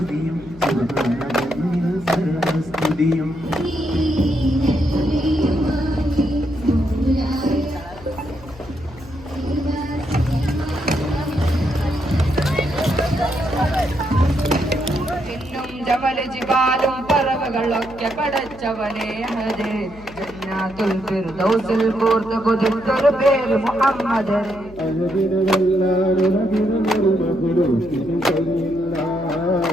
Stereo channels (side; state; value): left; noise; hum, 20 dB below the sound